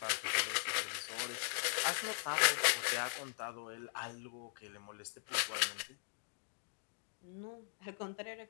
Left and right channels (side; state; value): right; silent; digital silence